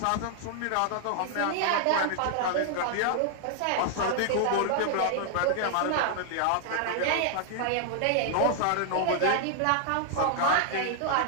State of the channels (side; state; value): both; different; correlation -0.01